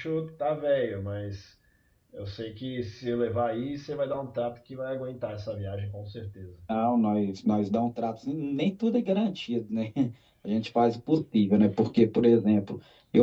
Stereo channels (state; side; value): identical; both; correlation 1.00